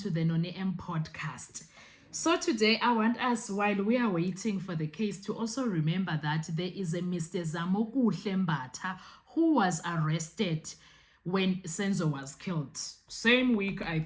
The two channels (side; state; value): both; identical; correlation 1.00